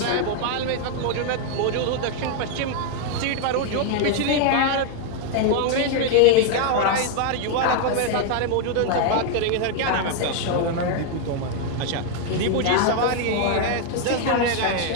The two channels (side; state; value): both; different; correlation 0.00